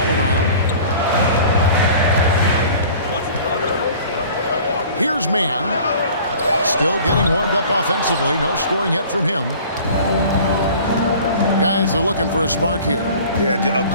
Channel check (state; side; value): inverted; both; correlation -0.46